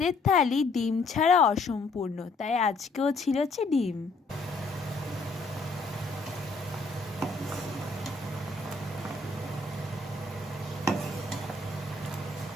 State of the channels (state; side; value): quieter; right; 3.5 dB